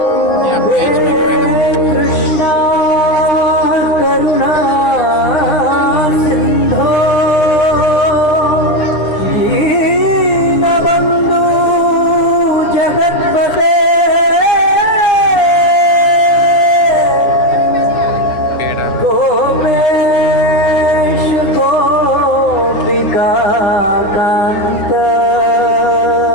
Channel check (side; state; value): right; late; 9.9 ms